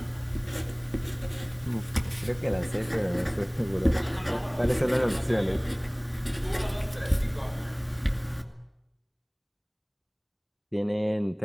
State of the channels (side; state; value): both; identical; correlation 1.00